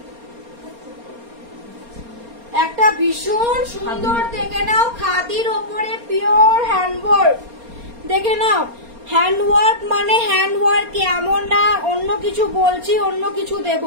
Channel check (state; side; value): late; left; 4.3 ms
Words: একটা ভীষণ সুন্দর দেখে নাও, খাদির ওপরে পিওর হ্যান্ডওয়ার্ক, দেখে নাও। হ্যান্ডওয়ার্ক মানে হ্যান্ডওয়ার্ক, এমন না অন্য কিছু বলছি অন্য কিছু দেব।